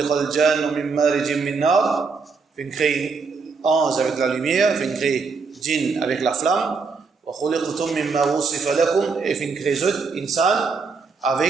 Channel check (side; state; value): left; quieter; 4.8 dB